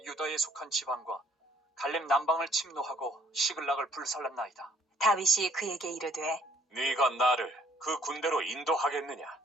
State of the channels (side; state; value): both; normal; correlation 0.61